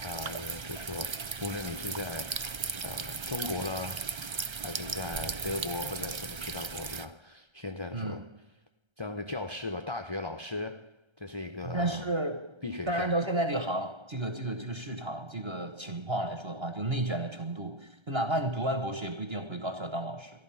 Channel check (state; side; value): late; left; 1.3 ms